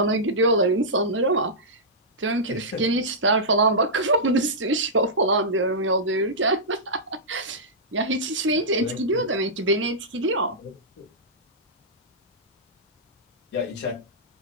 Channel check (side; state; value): both; normal; correlation -0.14